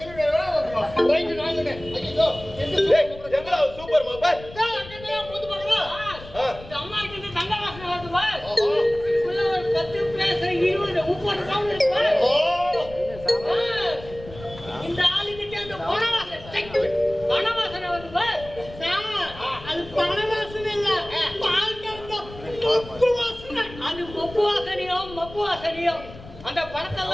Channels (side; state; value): left; noise; rumble, 16 dB below the sound